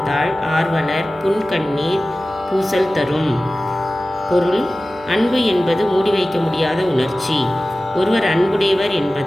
தாழ் ஆர்வலர் புன்கண்ணீர் பூசல் தரும். பொருள்: அன்பு என்பது மூடி வைக்க முடியாத உணர்ச்சி. ஒருவர் அன்புடையவர்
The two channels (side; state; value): right; noise; hum, 24 dB below the sound